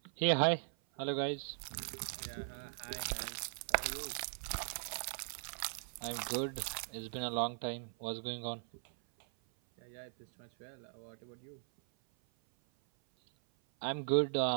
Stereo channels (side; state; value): left; silent; 52 dB below the other